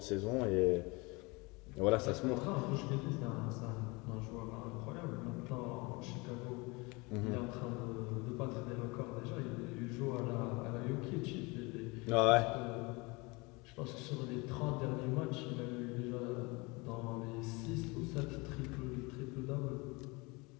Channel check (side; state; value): right; quieter; 26.3 dB